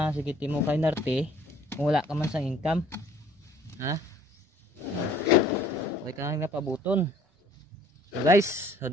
sige timo kay narte kung wala ka man sang income, okay ka nga pabuton. So guys, so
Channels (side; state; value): both; normal; correlation 0.56